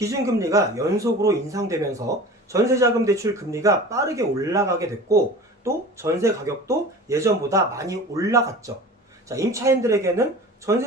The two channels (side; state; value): both; normal; correlation 0.38